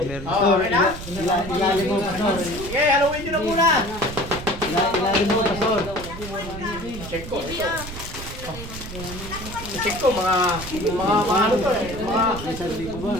meron. Oh, okay na? Ilalim mo, pastor. Sige, haluin nyo na muna. Ilalim mo, pastor. Check ko, ito. Check ko, mga ano to eh. Mga, May sandali ko ba?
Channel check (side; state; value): right; noise; rumble, 11 dB below the sound